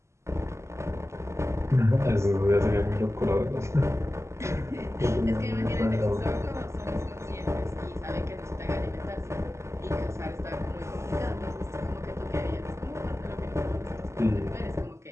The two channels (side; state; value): left; late; 0.13 ms